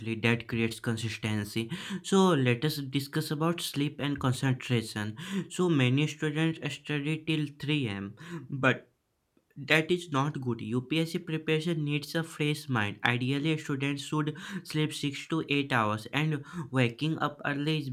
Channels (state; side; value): identical; both; correlation 1.00